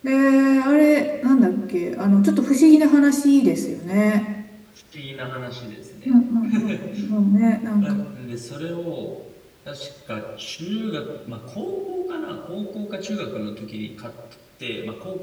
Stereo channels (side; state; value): both; identical; correlation 1.00